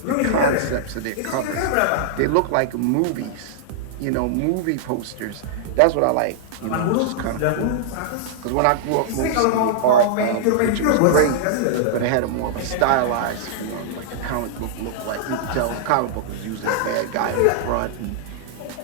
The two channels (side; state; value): both; different; correlation -0.01